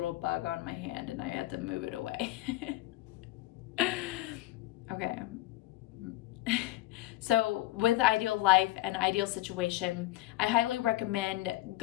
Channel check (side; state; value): right; quieter; 16.9 dB